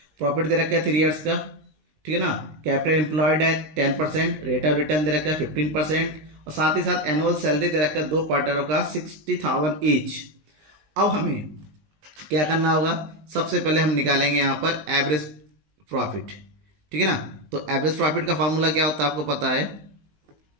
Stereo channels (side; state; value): left; late; 19 ms